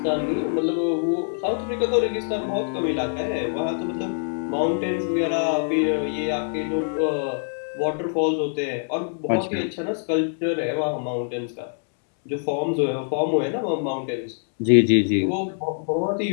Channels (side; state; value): right; silent; digital silence